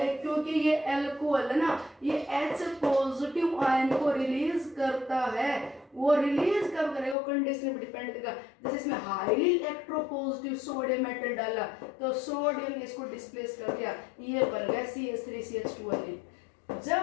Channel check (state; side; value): drops out; right; at 7.2 s